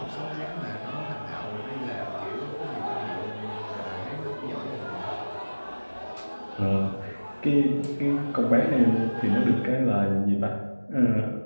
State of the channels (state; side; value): inverted; both; correlation -1.00